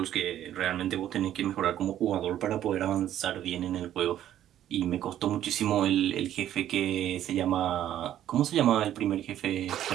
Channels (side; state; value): left; quieter; 11.7 dB